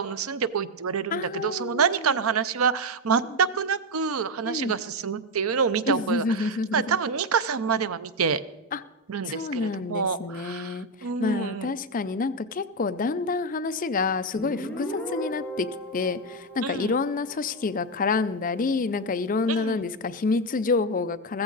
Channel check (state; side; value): normal; both; correlation 0.07